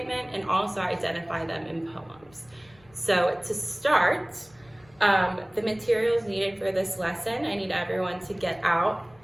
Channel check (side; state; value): left; noise; rumble, 29 dB below the sound